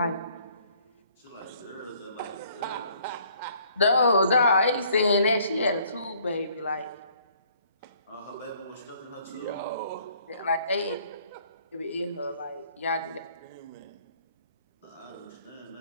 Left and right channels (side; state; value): both; inverted; correlation -0.61